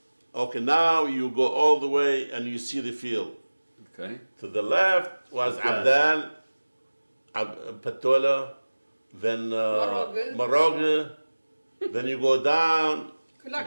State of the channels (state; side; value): inverted; both; correlation -1.00